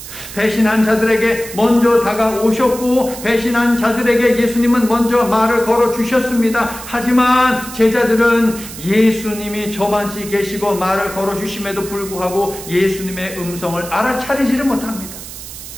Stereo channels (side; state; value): right; noise; hiss, 13 dB below the sound